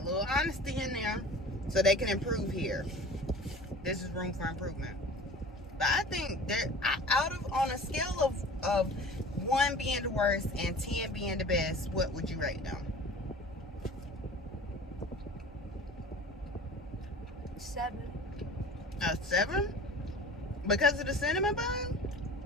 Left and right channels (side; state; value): both; normal; correlation 0.41